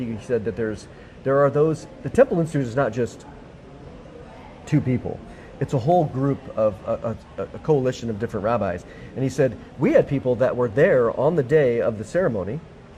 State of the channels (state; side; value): identical; both; correlation 1.00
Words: said that there are those, the Temple Institute is not just 2 people. It's a whole group of a coalition of different rabbis. And he said, we had people that were there on the day of the ceremony,